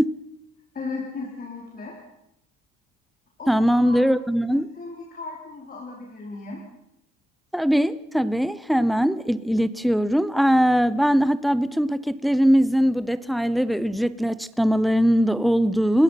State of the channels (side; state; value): both; normal; correlation 0.97